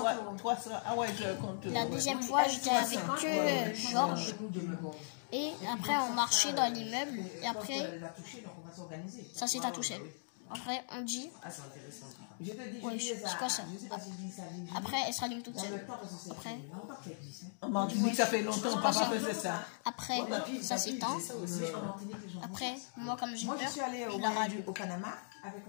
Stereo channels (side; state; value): right; silent; digital silence